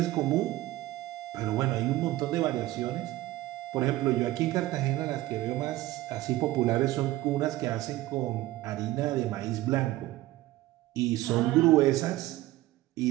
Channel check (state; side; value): quieter; left; 16.7 dB